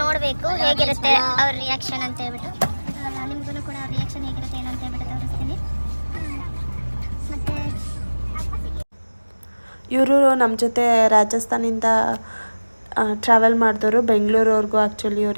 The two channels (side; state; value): both; inverted; correlation -1.00